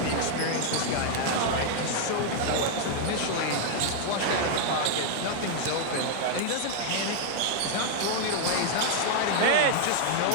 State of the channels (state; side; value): different; both; correlation 0.00